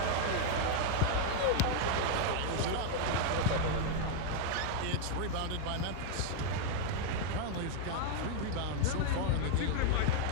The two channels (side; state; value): both; different; correlation 0.00